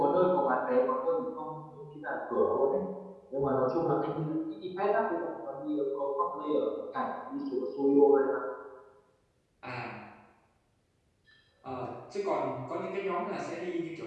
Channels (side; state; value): both; identical; correlation 1.00